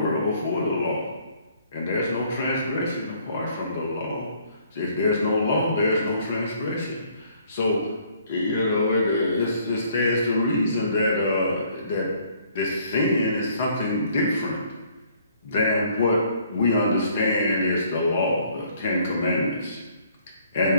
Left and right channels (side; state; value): both; inverted; correlation -0.62